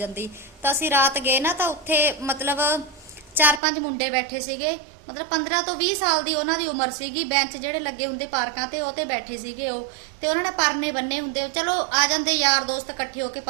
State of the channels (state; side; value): drops out; left; at 3.6 s